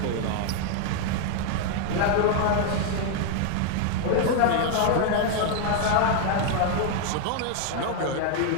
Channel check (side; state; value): both; different; correlation 0.00